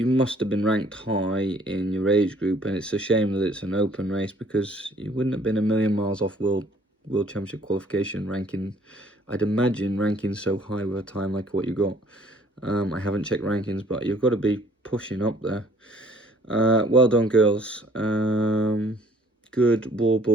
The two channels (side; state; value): both; normal; correlation 0.59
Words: must have been ranked high in your age group, and it's a shame that it's an open race because you wouldn't have been a million miles off World Championship qualification ranking. I'd imagine ranking so high with a time like what you got. I haven't checked rankings, but you've got to be pushing up there. Well done, girls. Good wall